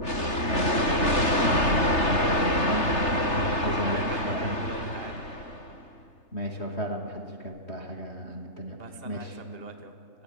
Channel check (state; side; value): late; right; 3.3 ms